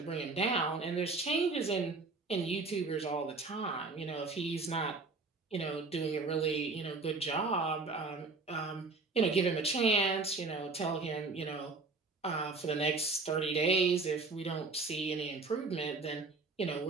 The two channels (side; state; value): left; quieter; 3.8 dB